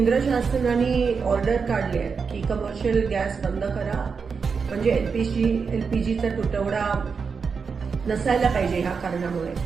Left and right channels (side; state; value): left; quieter; 5.5 dB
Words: शासनाने ऑर्डर काढली आहे की कमर्शियल गॅस बंद करा, म्हणजे LPGचा तुटवडा नसायला पाहिजे ह्या कारणामुळे।